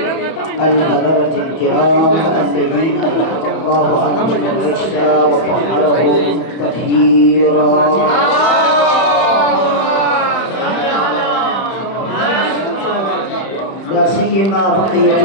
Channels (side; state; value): right; late; 31 ms